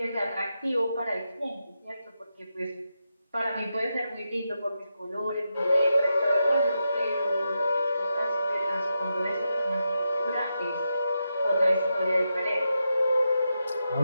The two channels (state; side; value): inverted; both; correlation -0.87